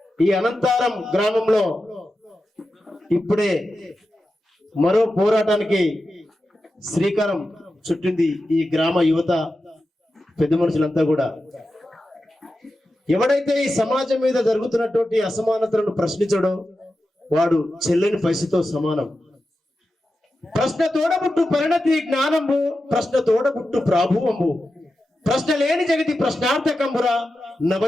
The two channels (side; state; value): both; normal; correlation 0.91